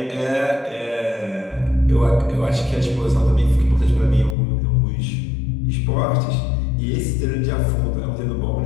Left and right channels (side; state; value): right; drops out; at 4.4 s